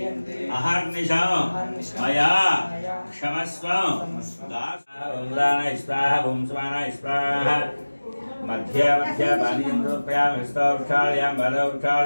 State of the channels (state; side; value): inverted; both; correlation -1.00